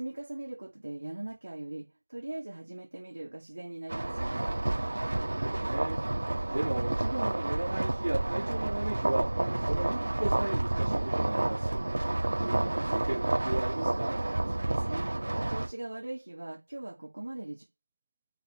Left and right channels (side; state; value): both; inverted; correlation -1.00